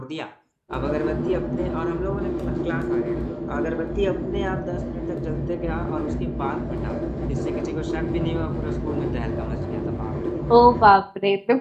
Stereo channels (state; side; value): identical; both; correlation 1.00